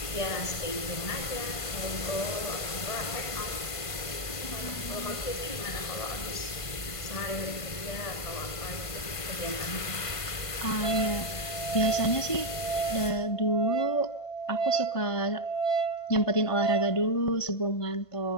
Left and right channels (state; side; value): late; right; 1.5 ms